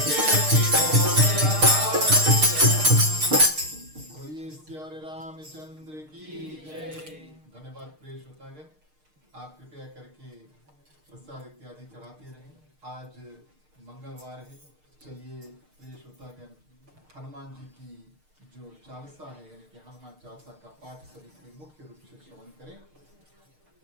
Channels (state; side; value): late; left; 6.6 ms